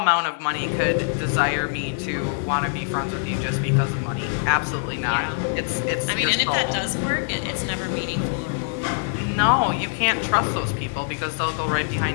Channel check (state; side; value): silent; right; digital silence